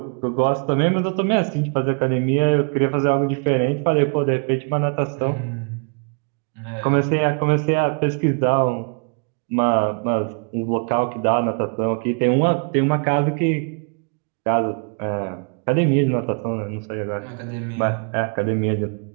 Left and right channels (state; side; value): quieter; left; 39.6 dB